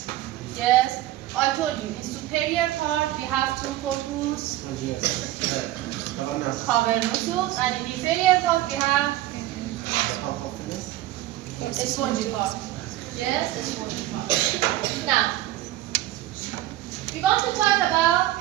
Yes, I told you, in superior part we have 2 corpus cavernosus, and in inferior part we have a spongy part. Yes, a spongy part. Now, we want to talk about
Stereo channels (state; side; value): quieter; left; 15.1 dB